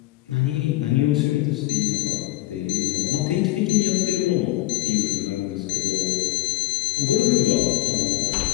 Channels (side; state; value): right; quieter; 17.4 dB